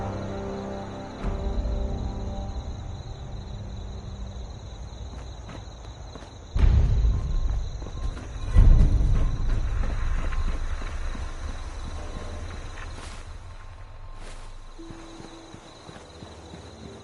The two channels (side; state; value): both; identical; correlation 1.00